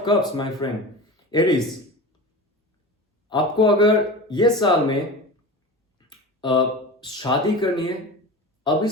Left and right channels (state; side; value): normal; both; correlation 0.30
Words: cups my friend, Aries, आपको अगर ये साल में शादी करनी है, अभी